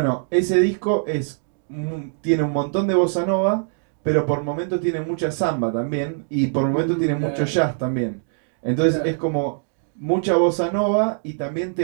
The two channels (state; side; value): silent; left; digital silence